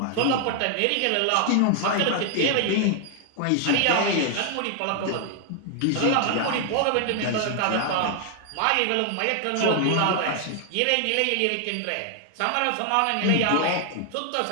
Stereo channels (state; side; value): different; both; correlation 0.00